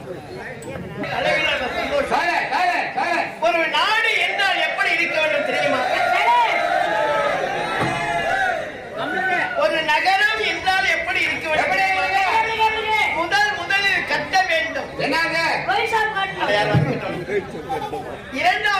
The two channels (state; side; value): identical; both; correlation 1.00